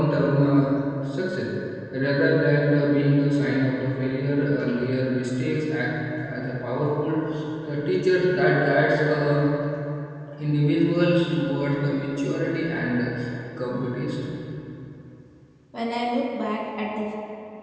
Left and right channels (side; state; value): both; identical; correlation 1.00